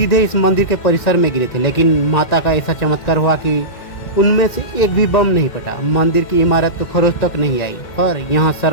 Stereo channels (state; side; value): late; right; 2.1 ms